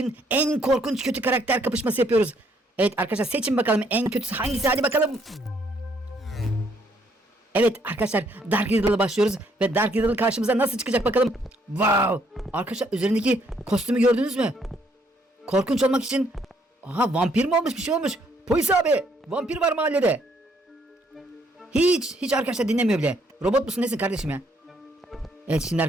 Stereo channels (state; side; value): normal; both; correlation 0.69